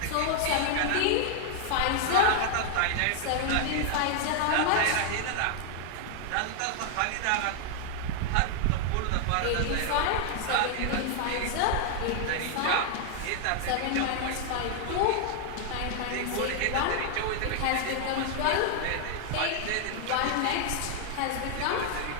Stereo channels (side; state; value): both; different; correlation 0.00